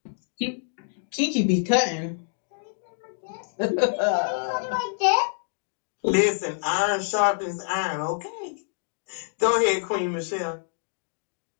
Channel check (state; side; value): silent; right; digital silence